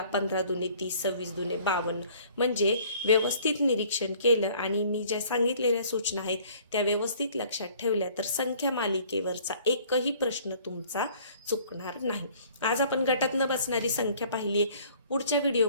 15 दुने 30, 26 दुने 52. म्हणजे व्यवस्थित निरीक्षण केलं आणि मी ज्या सांगितलेल्या सूचना आहेत त्या व्यवस्थित लक्षात ठेवल्या तर संख्या मालिकेवरचा एकही प्रश्न तुमचा चुकणार नाही. आज आपण गटात न बसणारी संख्या पाहिली आहे. पुढच्या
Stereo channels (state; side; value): inverted; both; correlation -0.54